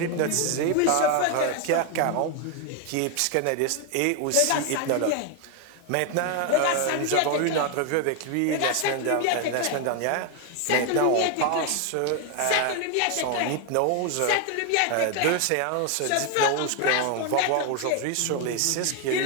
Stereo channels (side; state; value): both; different; correlation 0.01